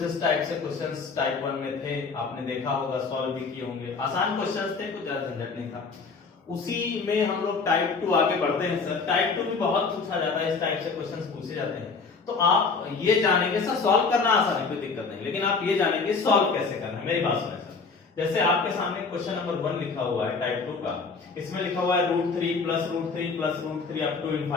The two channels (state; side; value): quieter; right; 4.7 dB